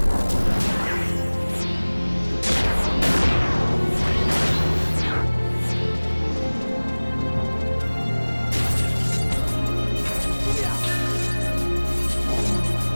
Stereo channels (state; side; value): inverted; both; correlation -1.00